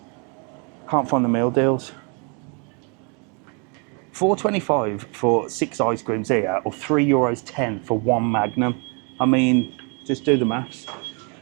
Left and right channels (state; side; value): quieter; left; 35.7 dB